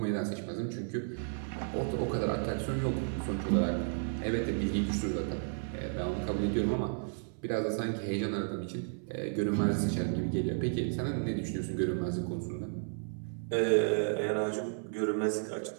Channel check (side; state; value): left; silent; 56 dB below the other